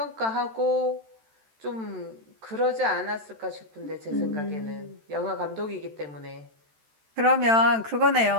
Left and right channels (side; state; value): left; late; 13 ms